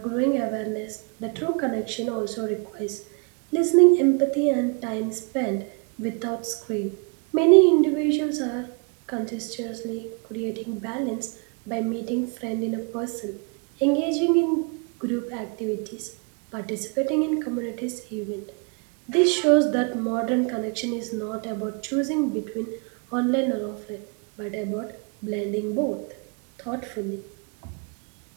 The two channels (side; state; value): left; quieter; 36.5 dB